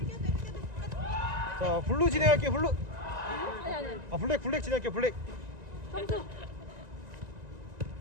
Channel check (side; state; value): left; late; 1.9 ms